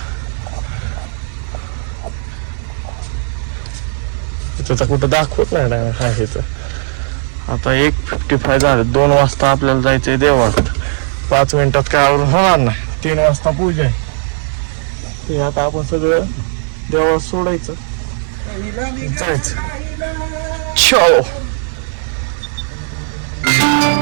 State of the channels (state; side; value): silent; left; digital silence